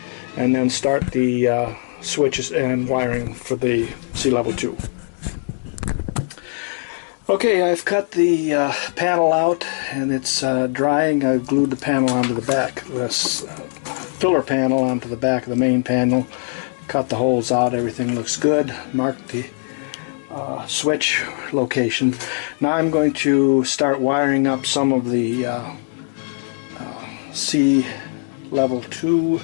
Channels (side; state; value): right; silent; 65 dB below the other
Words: and then start the switches and wiring for the Seelevel II. Okay, I've cut the panel out, and it's drying. I've glued the panel onto the back, this filler panel onto the back of the main panel, cut the holes out, everything looks good, marked the switch location. Now I'm going to start wiring up some of the Seelevel II